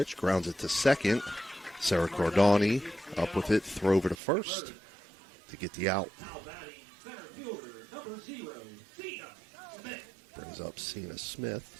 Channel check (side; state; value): left; drops out; at 4.2 s